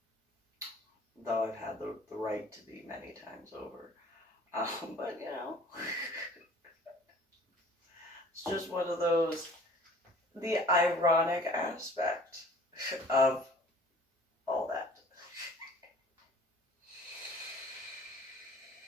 Though I've had the right to be many times over. But, you know, it's just one of those, the ironic aspect of all that.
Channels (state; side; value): normal; both; correlation 0.49